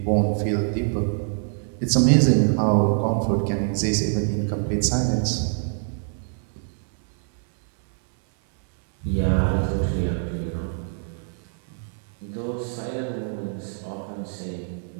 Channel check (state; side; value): silent; left; 62 dB below the other